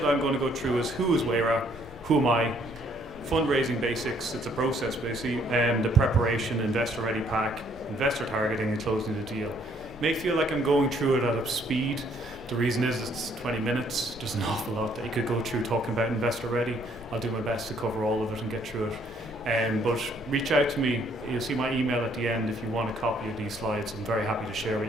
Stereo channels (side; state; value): left; noise; rumble, 20 dB below the sound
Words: I'm going to go through is who is Wayra, who am I, fundraising basics, it's a process basically, and the preparation, investor ready pack, investor targeting and closing the deal. May feel like I'm going through it at a speed. The reason is it's 20 minutes. There's an awful lot that you could go through talking about investor ready. I'll do my best to cover all of it and get through it. But reach out to me. You'll see my email at the end if you want a copy of these slides. I'm very happy to share with